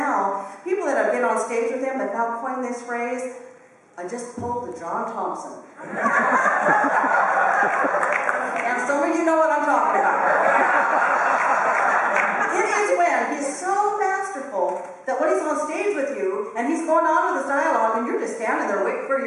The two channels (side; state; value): both; identical; correlation 1.00